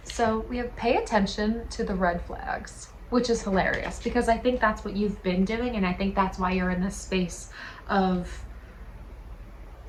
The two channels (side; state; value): both; identical; correlation 1.00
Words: So we have pay attention to the red flags, which is hilarious, because I think that's what you've been doing, and I think that's why you're in this space of